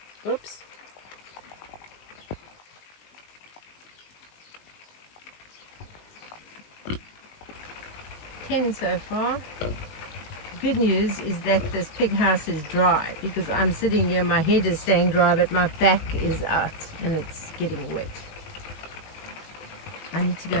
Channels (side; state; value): right; late; 19 ms